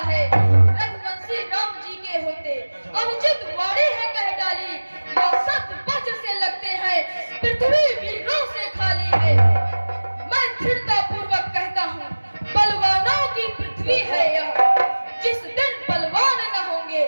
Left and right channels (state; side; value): inverted; both; correlation -1.00